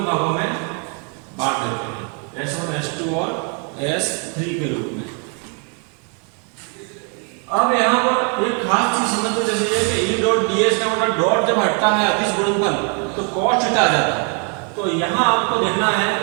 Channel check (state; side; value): quieter; left; 38.5 dB